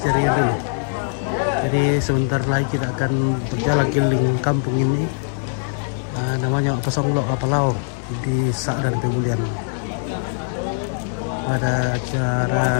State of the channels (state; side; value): silent; right; digital silence